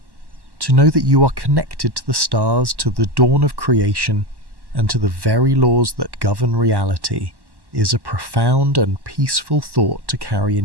to know that you are connected to the stars, to the dawn of creation, and to the very laws that govern reality, is a profound and peaceful thought to carry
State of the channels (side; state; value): left; late; 1.1 ms